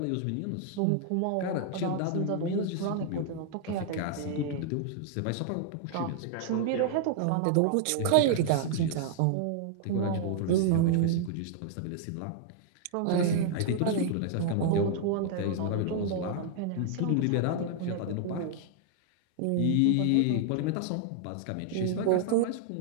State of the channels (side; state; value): both; different; correlation -0.01